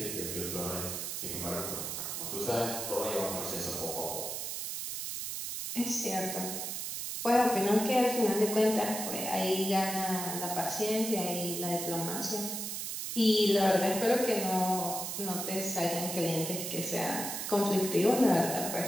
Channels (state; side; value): noise; right; hiss, 4 dB below the sound